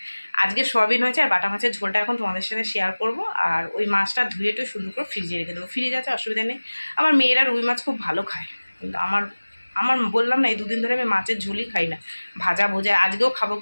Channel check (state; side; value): inverted; both; correlation -1.00